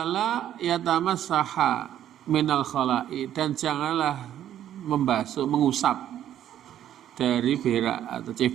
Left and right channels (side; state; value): left; quieter; 11.2 dB